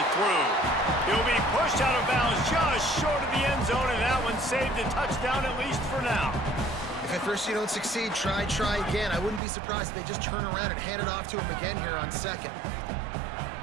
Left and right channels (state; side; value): drops out; left; at 9.4 s